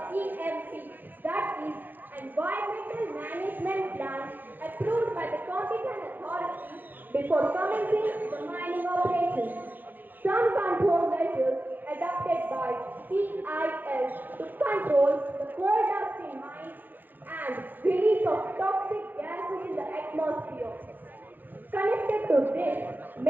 EMP, that is, Environmental Management Plan, approved by the competent authority before commencing the mining operations. Some control measures adopted by CIL to control the coal dust in mines and release of toxic gases in the atmosphere. Connected to this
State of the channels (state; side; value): late; left; 0.088 ms